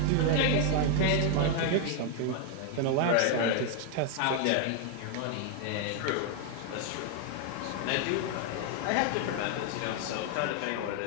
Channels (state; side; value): different; both; correlation 0.00